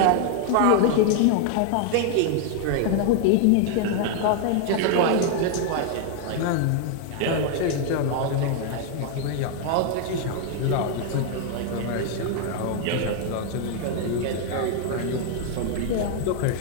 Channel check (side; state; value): both; different; correlation 0.00